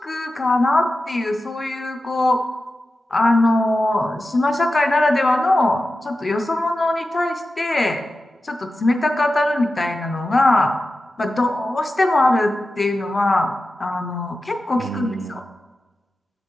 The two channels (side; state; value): both; normal; correlation 0.93